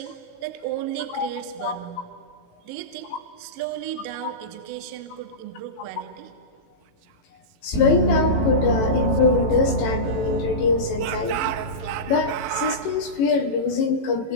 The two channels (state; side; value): late; right; 18 ms